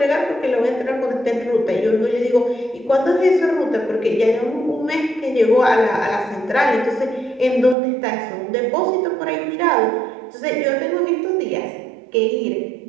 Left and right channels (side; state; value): left; drops out; at 7.8 s